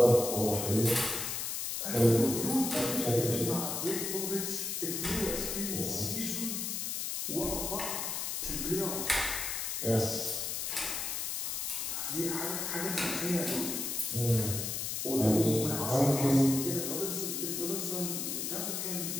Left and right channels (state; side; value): noise; left; hiss, 2 dB below the sound